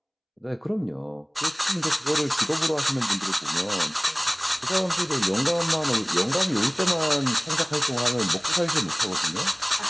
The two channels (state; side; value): identical; both; correlation 1.00